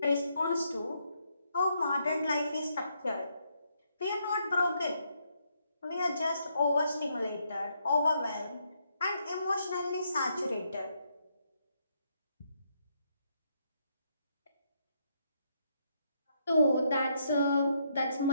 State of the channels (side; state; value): both; inverted; correlation -0.76